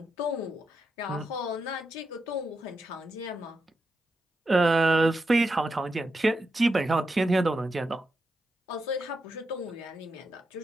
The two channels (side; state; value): both; normal; correlation 0.86